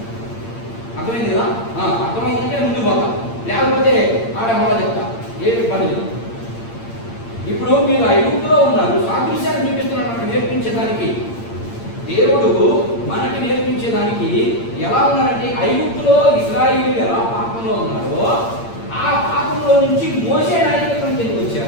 అర్థమైంది కదా? అర్థమైందంటే ముందు పోతా, లేకపోతే ఆడ మొదలు చెప్తా, ఏమి పని లేదు. ఇప్పుడు మీరు ఐగుప్తులో ఉన్నారు, సాదృశ్యాన్ని చూపిస్తున్నాడు మనకు నేర్పించడానికి. దేవుడు మనకి నేర్పించేదానికి ఎలా ఉన్నారంటే, ఐగుప్తులో ఇశ్రాయేలీయులు ఎలా పాపంలో ఉన్నారో ఆ పాపంలో నుంచి మోషే నాయకత్వం కిందకి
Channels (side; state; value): right; late; 8.7 ms